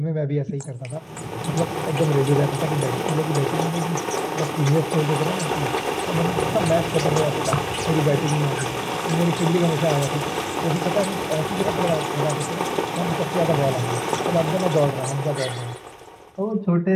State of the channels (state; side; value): identical; both; correlation 1.00